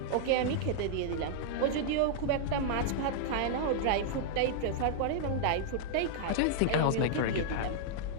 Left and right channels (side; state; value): both; different; correlation -0.01